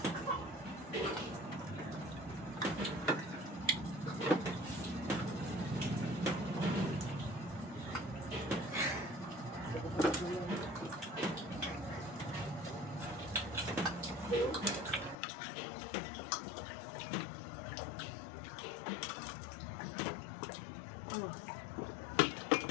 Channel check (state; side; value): drops out; right; at 15.2 s